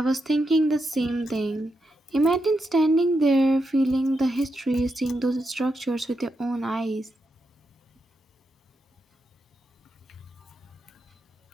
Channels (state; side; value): normal; both; correlation 0.85